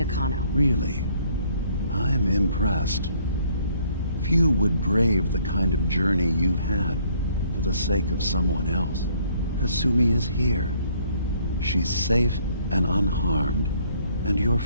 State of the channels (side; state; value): both; inverted; correlation -0.64